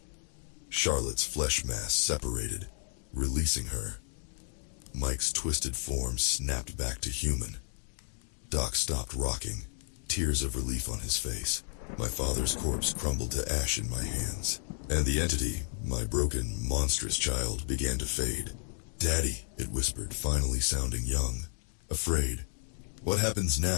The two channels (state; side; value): silent; right; 56 dB below the other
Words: Charlotte's flesh mass separated, releasing her. Mike's twisted form snapped back to human. Doc stopped rocking, tears of relief on his face. My father's corpse crumbled to ash in my hands, and the entity, my broken, monstrous child, began to fade. "Daddy," it whispered, finally sounding young, afraid. "What happens